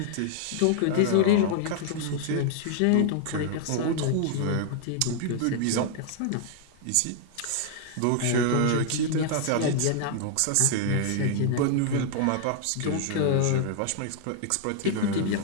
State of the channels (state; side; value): different; both; correlation 0.00